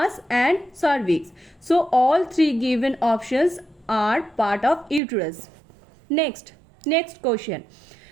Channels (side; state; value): left; drops out; at 5.0 s